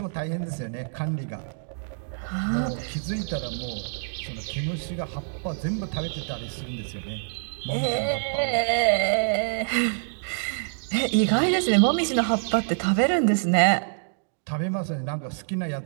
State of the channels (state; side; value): silent; left; digital silence